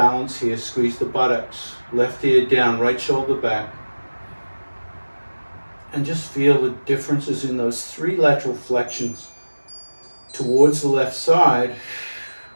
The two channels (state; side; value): inverted; both; correlation -1.00